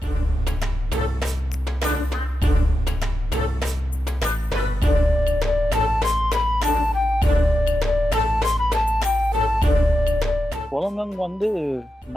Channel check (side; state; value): both; normal; correlation 0.89